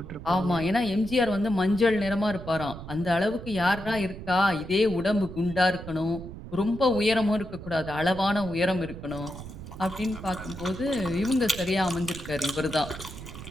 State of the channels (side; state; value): right; noise; rumble, 12 dB below the sound